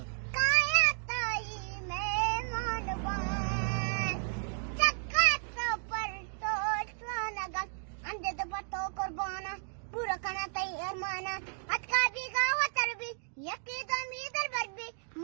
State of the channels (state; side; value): silent; left; 56 dB below the other